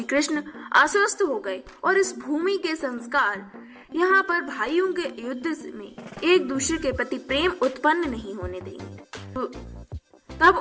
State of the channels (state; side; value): identical; both; correlation 1.00